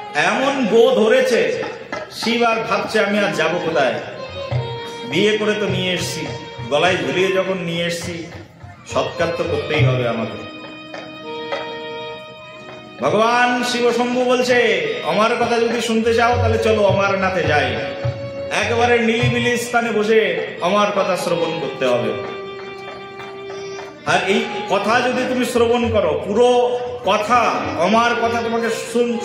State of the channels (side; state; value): both; identical; correlation 1.00